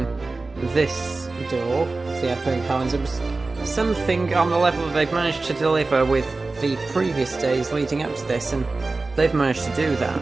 this door, the advent calendar, was something on the level that they've managed to deliver with the previous days leading up to this, and they've managed to do that.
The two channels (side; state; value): left; quieter; 3.5 dB